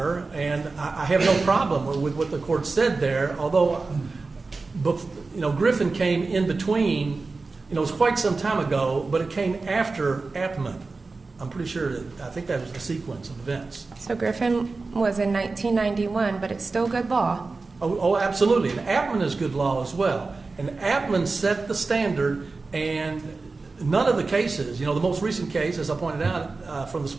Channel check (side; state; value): left; quieter; 3.9 dB